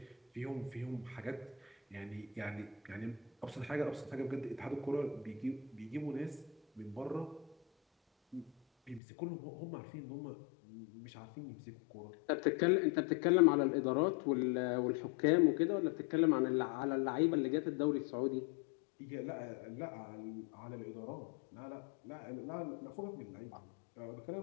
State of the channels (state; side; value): drops out; right; at 9.0 s